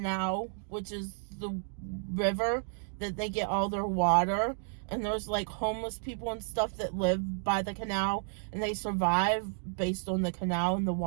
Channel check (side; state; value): left; silent; digital silence